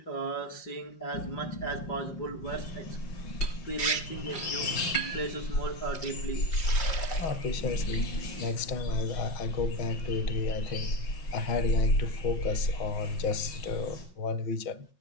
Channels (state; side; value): late; right; 5.6 ms